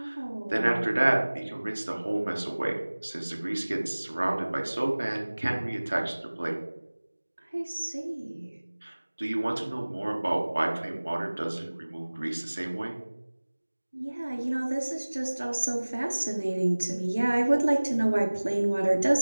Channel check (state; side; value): inverted; both; correlation -1.00